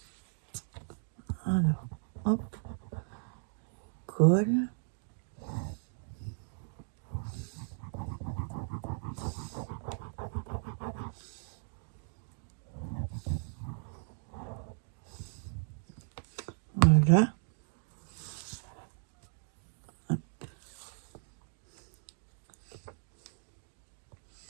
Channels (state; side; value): silent; left; digital silence